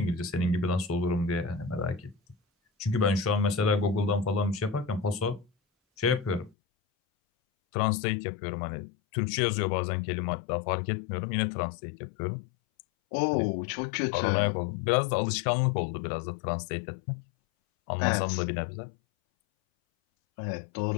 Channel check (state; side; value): drops out; right; at 6.6 s